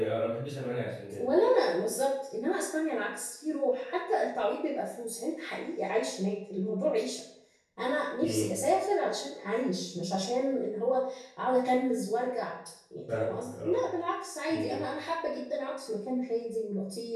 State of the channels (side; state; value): both; identical; correlation 1.00